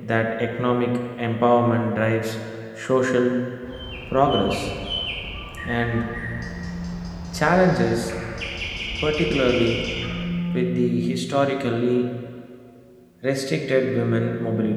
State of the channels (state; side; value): identical; both; correlation 1.00